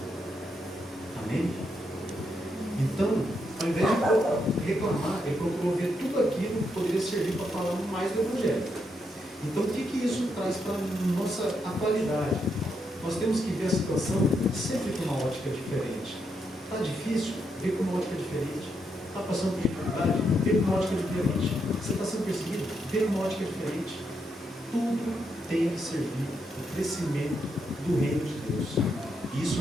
Amém? Então, ao invés de reclamar, ele procurou ver tudo aquilo que poderia servir para falar mais do Evangelho. Então, o que isso traz para a nossa atualidade? Nós temos que ver a situação sempre com uma ótica diferente. Está difícil? Vê com uma ótica diferente. Está passando por dificuldade? Vê com uma ótica diferente. Você está sendo perseguido? Vê com uma ótica diferente. Tudo tem que servir ao crescimento do reino de Deus. E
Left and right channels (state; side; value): normal; both; correlation 0.80